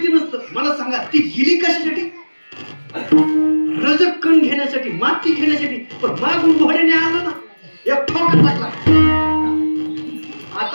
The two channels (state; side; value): inverted; both; correlation -1.00